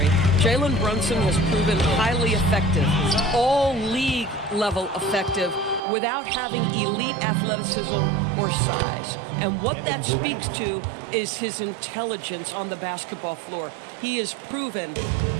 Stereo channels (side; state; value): left; drops out; at 5.8 s